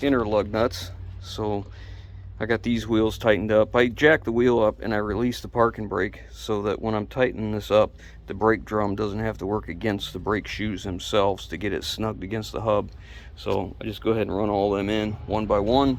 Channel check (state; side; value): identical; both; correlation 1.00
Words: inner lug nuts. So I got these wheels tightened up. I jacked the wheel up and I released the parking brake so that when I'm tightening this up, the brake drum doesn't have to work against the brake shoes themselves to get it snugged against the hub. So I just go ahead and run all them in one by one.